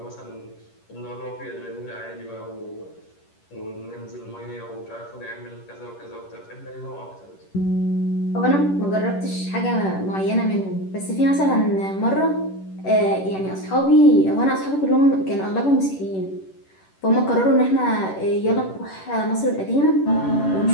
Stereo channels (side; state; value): right; late; 10 ms